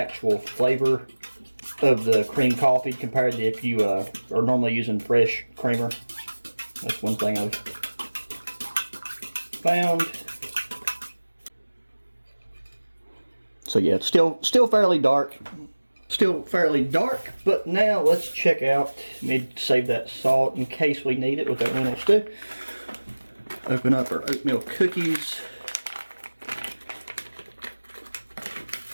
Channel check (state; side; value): inverted; both; correlation -1.00